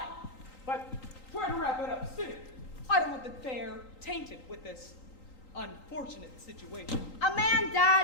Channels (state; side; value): late; right; 3.8 ms